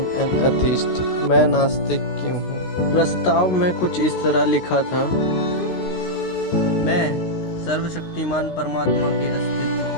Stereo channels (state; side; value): late; right; 16 ms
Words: an atheist, मैं नास्तिक क्यों हूँ। प्रस्ताव में कुछ इस तरह लिखा था। मैं सर्वशक्तिमान परमात्मा के अस्तित्व